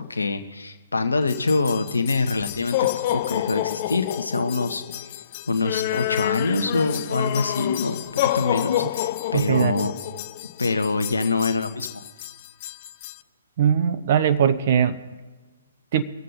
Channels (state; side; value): inverted; both; correlation -0.63